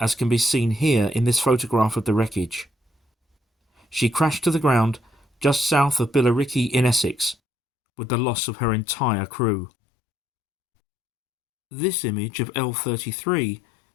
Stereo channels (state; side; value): drops out; right; at 7.4 s